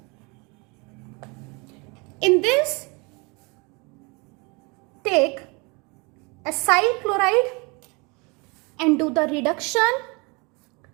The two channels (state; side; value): quieter; left; 29.1 dB